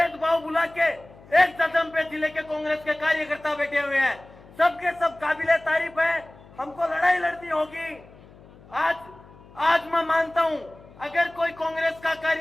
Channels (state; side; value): noise; left; hum, 23 dB below the sound